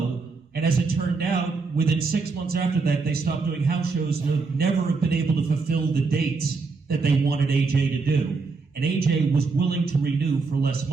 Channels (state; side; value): quieter; left; 4.2 dB